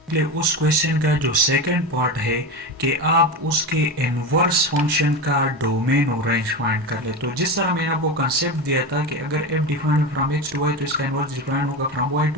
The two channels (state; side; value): normal; both; correlation 0.21